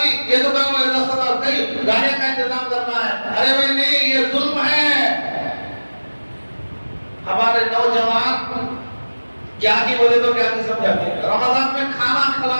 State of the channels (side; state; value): both; inverted; correlation -1.00